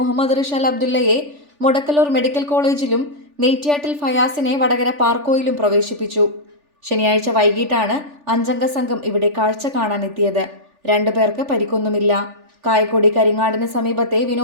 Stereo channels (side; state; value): left; late; 3.4 ms